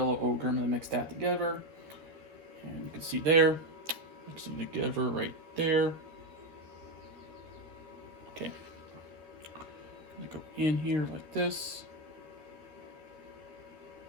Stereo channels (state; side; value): late; left; 12 ms